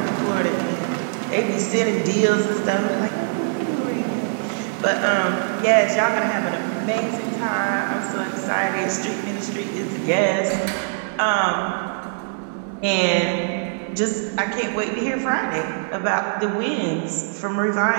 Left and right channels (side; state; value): left; silent; digital silence